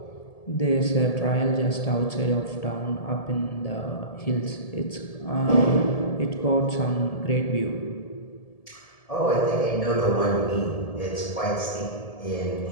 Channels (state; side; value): late; right; 1.7 ms